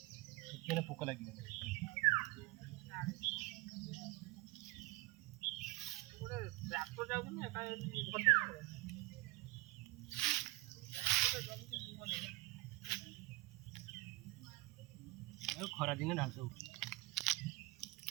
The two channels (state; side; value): quieter; left; 22.1 dB